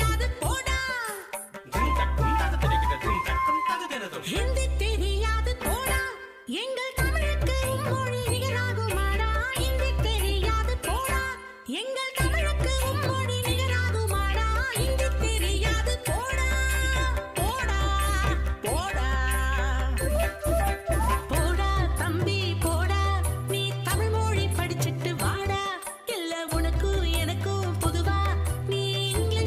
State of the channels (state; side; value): identical; both; correlation 1.00